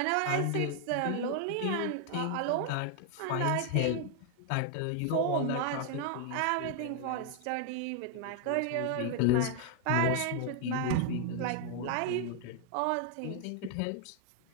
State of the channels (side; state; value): both; different; correlation 0.00